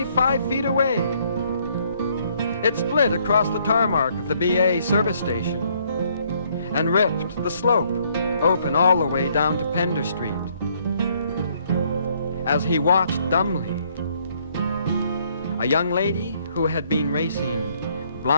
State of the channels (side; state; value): both; inverted; correlation -0.67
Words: 5 feet away. It split across the tarmac of the BA service station and ripped the slope open all the way down to Pender Street. As he watched dumbly, a young lady who had been racing